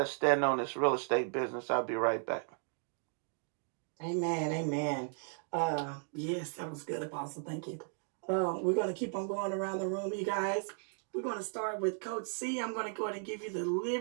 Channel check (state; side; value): silent; left; 54 dB below the other